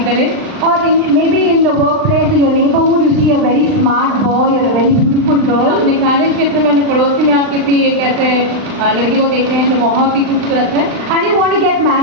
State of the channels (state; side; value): late; left; 39 ms